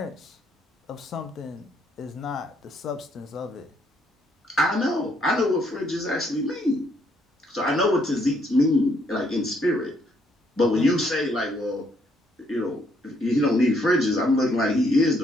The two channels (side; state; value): both; normal; correlation 0.71